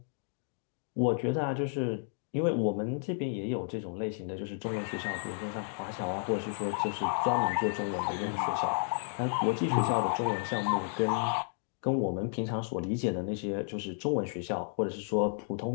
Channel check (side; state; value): right; silent; digital silence